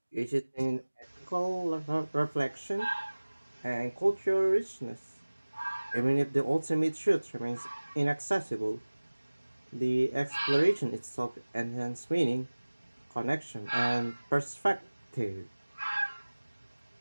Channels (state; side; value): inverted; both; correlation -1.00